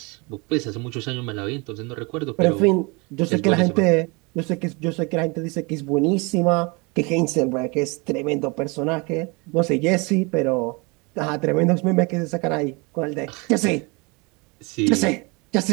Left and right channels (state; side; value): quieter; left; 28.5 dB